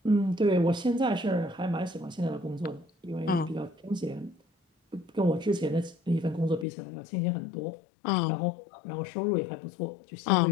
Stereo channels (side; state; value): right; drops out; at 6.7 s